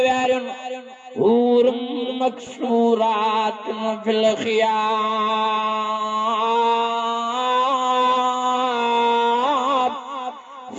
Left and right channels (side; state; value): both; identical; correlation 1.00